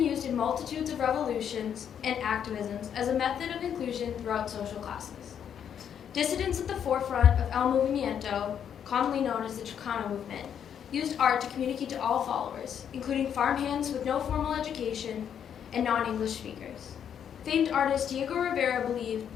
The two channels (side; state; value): right; quieter; 8.6 dB